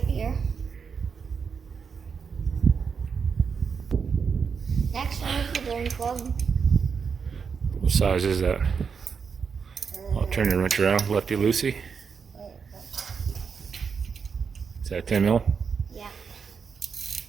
here. Next one is the drain plug. What size is that? I'll turn your wrench around, lefty loosey. Is that 10 mil? Yeah.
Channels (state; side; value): quieter; left; 6.0 dB